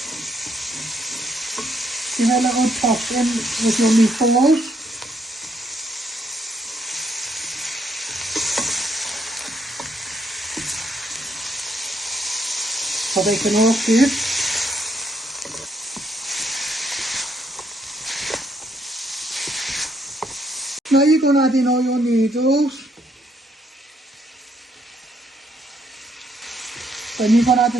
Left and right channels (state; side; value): normal; both; correlation 0.72